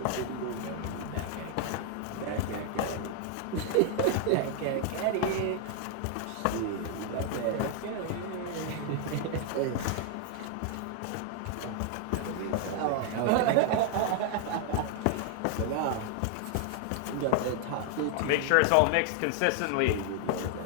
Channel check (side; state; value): both; different; correlation 0.00